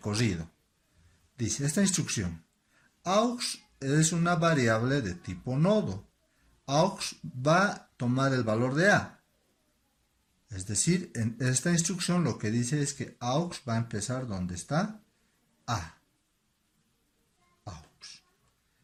Dice esta instrucción, aux es una variable de tipo nodo. Aux va a tomar el valor de A. Es decir, en esta instrucción lo que dice es que aux va a empezar donde está A.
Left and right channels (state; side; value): identical; both; correlation 1.00